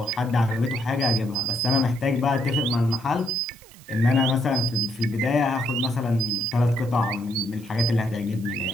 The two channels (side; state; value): right; noise; hiss, 23 dB below the sound